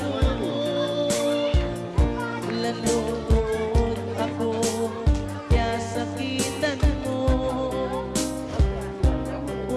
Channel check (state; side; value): identical; both; correlation 1.00